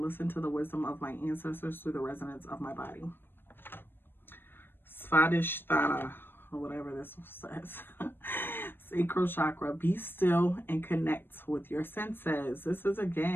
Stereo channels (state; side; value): late; right; 0.099 ms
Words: to the wisdom of my ancestors through the resonance of my body. Svadhishthana, or whatever this says. Sacral chakra, be still and connect with your senses. This is,